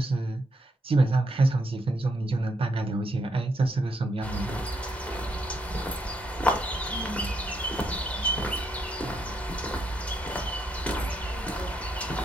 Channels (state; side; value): normal; both; correlation 0.77